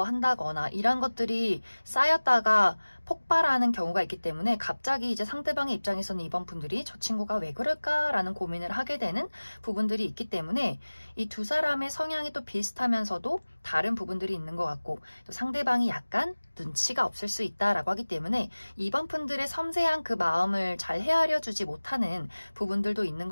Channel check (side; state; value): both; inverted; correlation -1.00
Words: 이런 것들이 쌓였다가 폭발하는 경우가 있기 때문에 갑자기 이제 상대방의 입장에서는 이번 분들이 저 친구가 왜 그럴까라는 고민을 하게 되는 부분들이 있기 때문에 이 두 사람의 성향이 또 비슷하면서도 다른 부분들이 있는 것 같고 또 상대방이 약간 눈치가 없을 수 있다라고 하기 때문에 이번 분들의 섬세한 그 마음을 잘 헤아려 주지 못하는 부분들도 있는